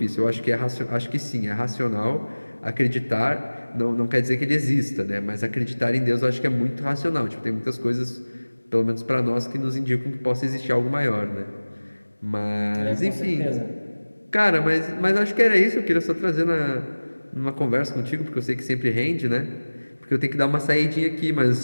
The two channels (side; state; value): both; inverted; correlation -1.00